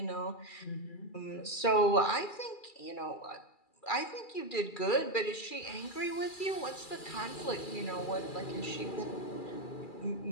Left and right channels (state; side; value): late; right; 2.3 ms